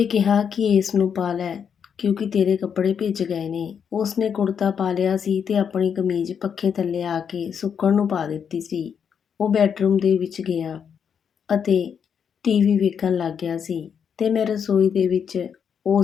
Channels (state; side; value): quieter; right; 7.4 dB